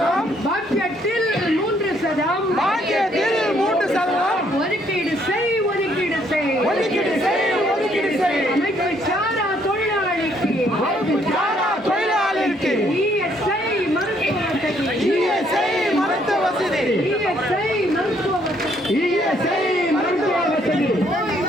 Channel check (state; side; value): normal; both; correlation 0.68